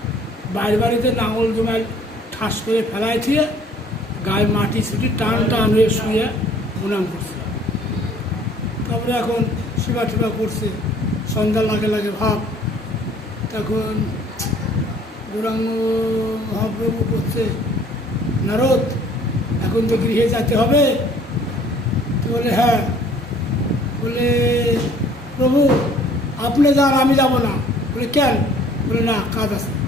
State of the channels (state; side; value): normal; both; correlation 0.56